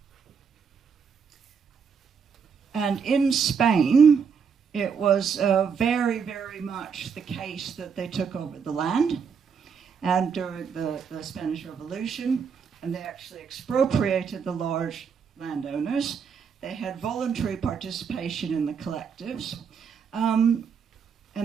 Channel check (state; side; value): quieter; left; 6.4 dB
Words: And in Spain, it was very, very much the case that they took over the land, and during the Spanish Revolution, and they actually expropriated the large landowners. They had voluntary participation in the collectives, and